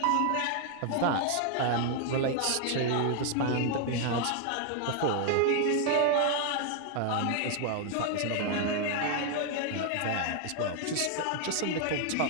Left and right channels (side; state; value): both; different; correlation 0.00